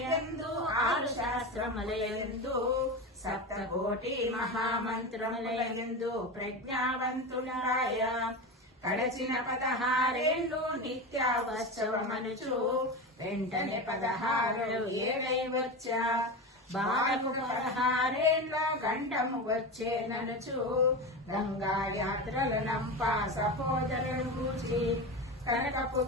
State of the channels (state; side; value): normal; both; correlation 0.22